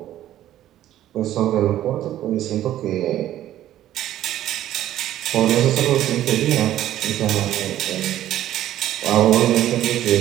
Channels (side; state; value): left; quieter; 12.7 dB